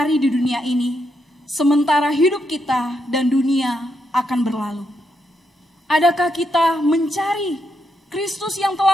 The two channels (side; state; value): both; normal; correlation 0.81